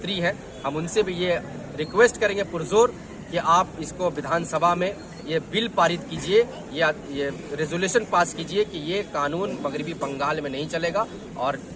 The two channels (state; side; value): identical; both; correlation 1.00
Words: ہیں، ہم ان سے بھی یہ ریکویسٹ کریں گے پرزور کہ آپ اس کو ودھان سبھا میں یہ بل پارت کیجئے یا یہ ریزولوشن پاس کیجئے کہ یہ قانون مغربی بنگال میں نہیں چلے گا، اور